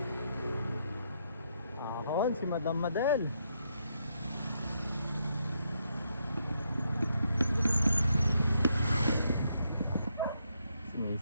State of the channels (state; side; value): inverted; both; correlation -0.78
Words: Ahon, si Madam Madel. Si